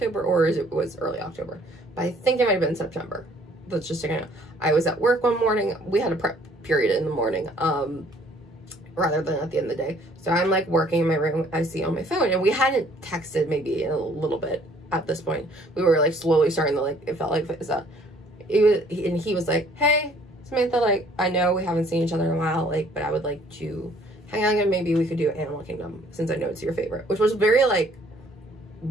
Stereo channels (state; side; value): normal; both; correlation 0.60